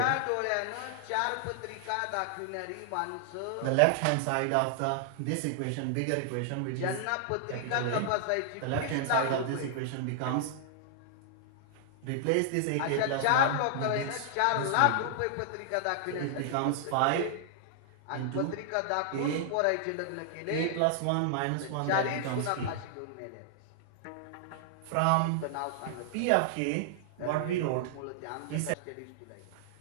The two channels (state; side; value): different; both; correlation -0.01